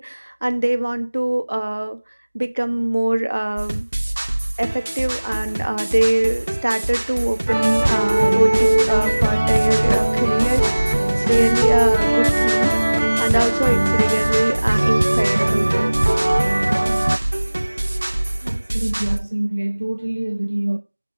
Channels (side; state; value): both; inverted; correlation -1.00